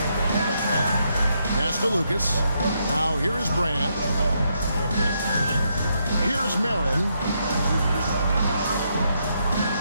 Pass to Lucas. Now here is Brand. Here's Marin.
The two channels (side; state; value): both; inverted; correlation -0.78